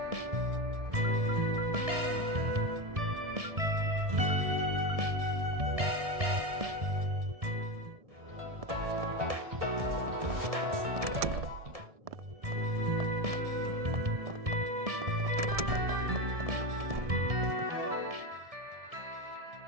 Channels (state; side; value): late; left; 1.7 ms